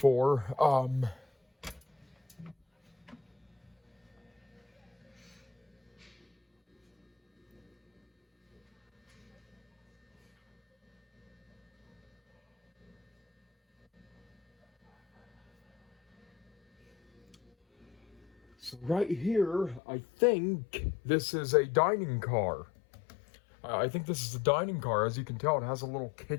So right here, I think this is a dining car. I think this is a dining car. As you can tell, it has a little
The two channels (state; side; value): drops out; right; at 19.8 s